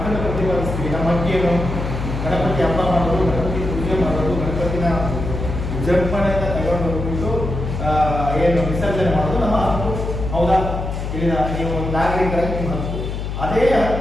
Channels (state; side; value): noise; left; hum, 4 dB below the sound